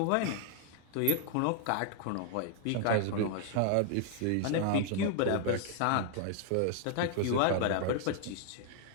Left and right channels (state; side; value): different; both; correlation 0.00